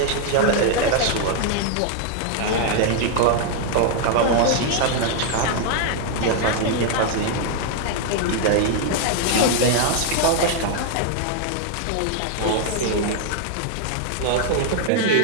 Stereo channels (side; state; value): both; different; correlation 0.00